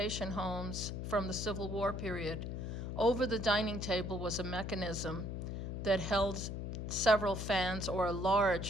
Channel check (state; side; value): noise; left; hum, 4 dB below the sound